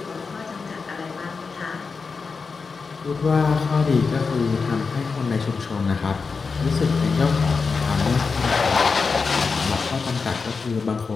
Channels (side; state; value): right; quieter; 4.8 dB